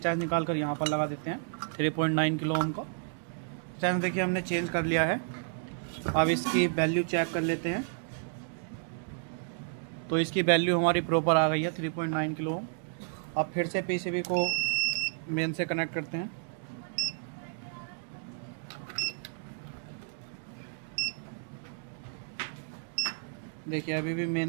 निकाल कर यहाँ पर लगा देते हैं 3.9 किलो ओम का। रेजिस्टेंस देखिए हमने चेंज कर लिया है। अब इसकी वैल्यू चेक कर लेते हैं। तो इसकी वैल्यू हमारी प्रॉपर आ गई है 3.9 किलो ओम। अब फिर से पीसीबी को मेन से कनेक्ट करते हैं। देखिए अभी भी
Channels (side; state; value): left; silent; digital silence